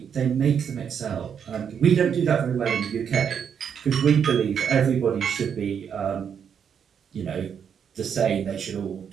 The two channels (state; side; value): quieter; left; 7.6 dB